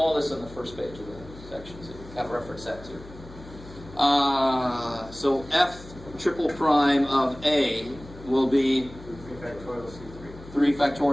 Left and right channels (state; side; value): noise; left; hum, 17 dB below the sound